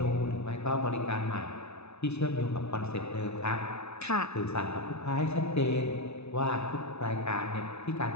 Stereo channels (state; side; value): late; right; 0.80 ms